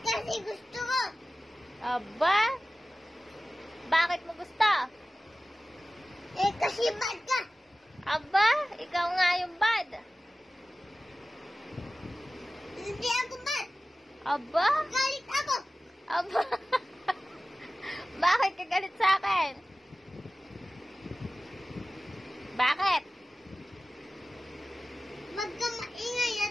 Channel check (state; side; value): normal; both; correlation 0.96